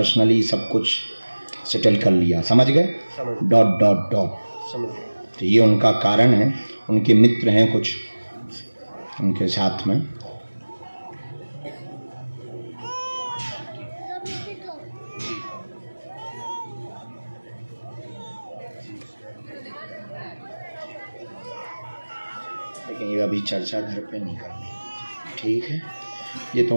सब कुछ सेटल कर लिया। समझ गए? समझ। Dot dot dot. समझ। तो ये उनका कारण है, उनके मित्र हैं कुछ उनके साथ में। लेकिन ये अभी चर्चा घर पे नहीं करनी, ठीक है? ये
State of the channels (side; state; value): both; inverted; correlation -1.00